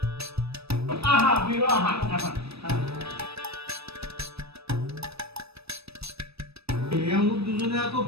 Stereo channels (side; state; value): left; late; 0.78 ms